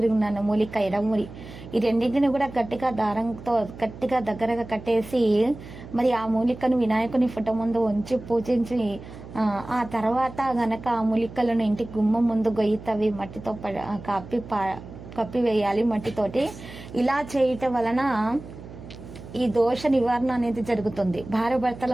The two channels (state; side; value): noise; right; hum, 15 dB below the sound